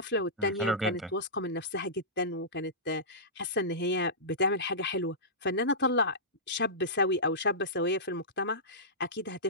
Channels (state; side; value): normal; both; correlation -0.18